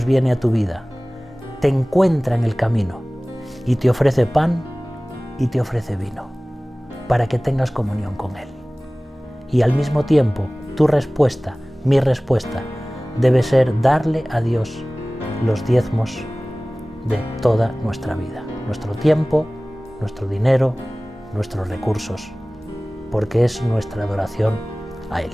viene a tu vida, te encuentra en el camino y te ofrece pan y te ofrece vino para que tengas comunión con Él. Y al mismo tiempo, tu respuesta, mi respuesta, debe ser darle a Dios los diezmos de toda nuestra vida, nuestro tiempo, nuestro dinero, nuestros recursos, porque es nuestra adoración a Él.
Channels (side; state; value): both; normal; correlation 0.98